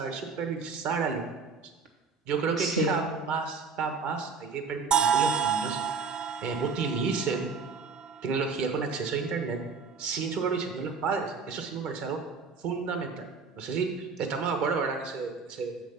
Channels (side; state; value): left; quieter; 5.0 dB